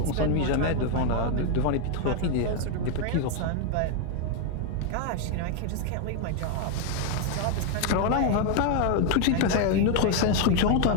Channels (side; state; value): both; different; correlation 0.01